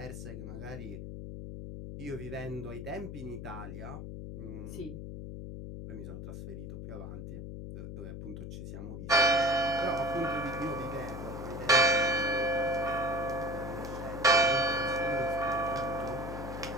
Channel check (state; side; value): noise; left; hum, 8 dB below the sound